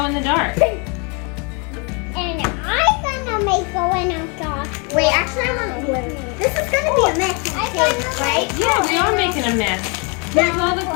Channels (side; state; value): right; quieter; 33.3 dB